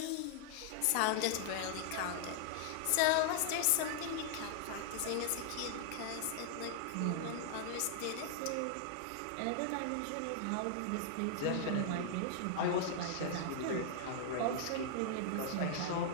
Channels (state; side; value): different; both; correlation 0.00